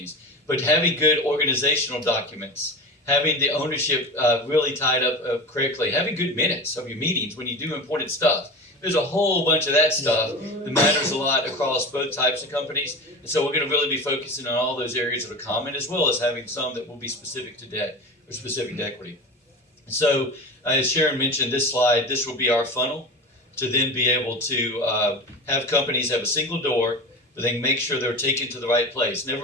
but having good organizational documents, having the ownership really tied up correctly, having good minutes of your meetings when you do important stuff. There's a whole bunch of that stuff that matters a lot across both types of companies. And so we're going to really be focusing on all those areas that are common, as well as having some that will be specific to debt or specific to equity. And so as Sharon mentioned, this slide, this will be our funnel to then be able to have companies have a single door, but then make sure they're taken to the right place.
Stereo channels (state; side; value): normal; both; correlation 0.29